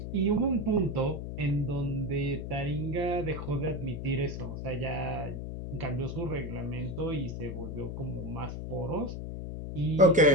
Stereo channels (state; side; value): noise; left; hum, 6 dB below the sound